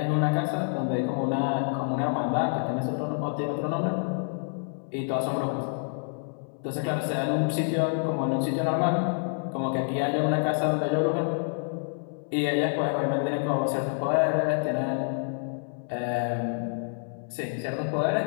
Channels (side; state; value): right; silent; 59 dB below the other